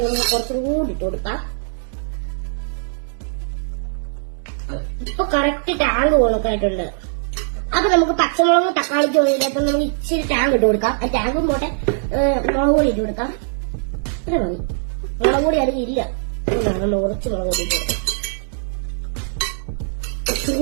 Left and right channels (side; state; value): left; silent; digital silence